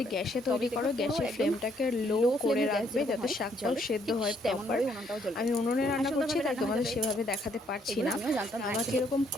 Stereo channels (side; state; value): both; normal; correlation 0.69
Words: গ্যাসে তৈরি করো, গ্যাসের ফ্লেমটাকে লো করে রাখবে যাতে শাকটাও সেদ্ধ হয় প্রপার। আমি উনুনে রান্না করছি, তাই তোমাদের সেভাবে দেখাতে পারছি না। আমাকে এরকম